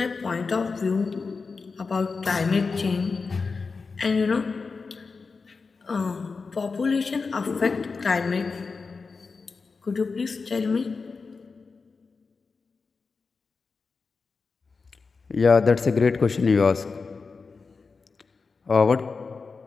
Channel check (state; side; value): quieter; right; 4.6 dB